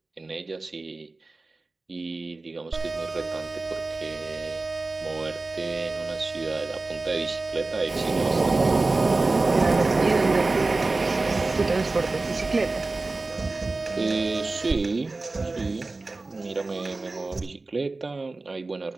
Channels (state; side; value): quieter; left; 3.4 dB